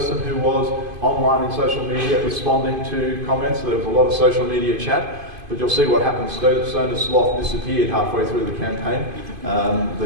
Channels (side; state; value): left; late; 2.5 ms